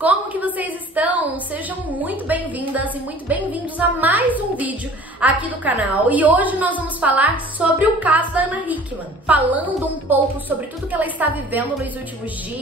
que vocês estão? Sejam muito bem-vindas e muito bem-vindos a mais um vídeo aqui do canal. E hoje nós vamos falar sobre o caso da Ana Hickman, falando um pouco sobre tudo que ela está vivendo nos últimos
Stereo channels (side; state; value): both; normal; correlation 0.48